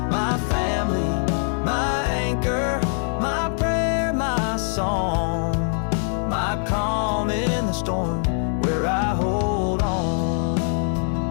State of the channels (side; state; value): right; silent; 63 dB below the other